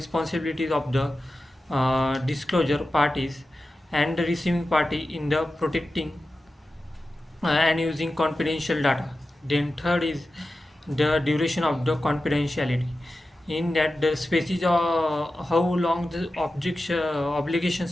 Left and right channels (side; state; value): both; normal; correlation 0.93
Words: of the disclosure parties and the receiving party in the protecting and using confidential data. Then third is the duration of the confidentiality. In that, the species how long the